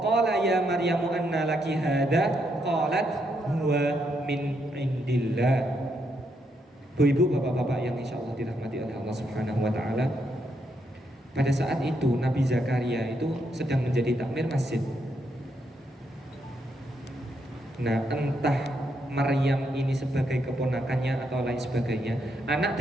ya Maryamu anna laki hadha qalat huwa min 'indillah. Bu ibu bapak-bapak yang insyaallah dirahmati oleh Allah Subhanahu wa taala, pada saat itu Nabi Zakaria itu sedang menjadi takmir masjid. Nah, entah Maryam ini sebagai keponakannya atau lain sebagainya, anak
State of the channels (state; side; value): normal; both; correlation 0.78